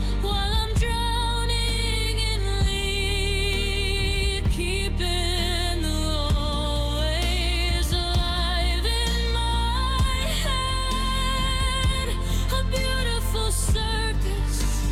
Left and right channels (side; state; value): both; identical; correlation 1.00